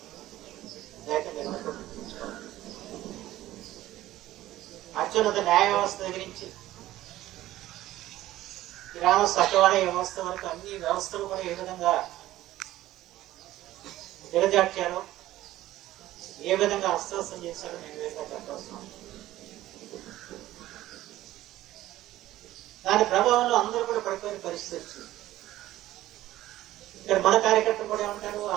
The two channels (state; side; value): quieter; left; 15.0 dB